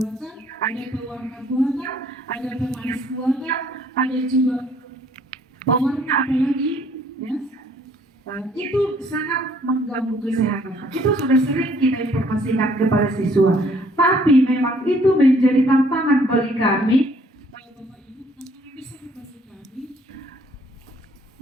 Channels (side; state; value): both; normal; correlation 0.62